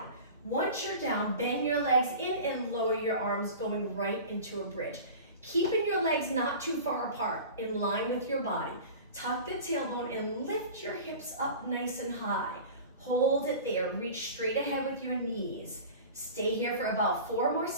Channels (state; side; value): inverted; both; correlation -0.36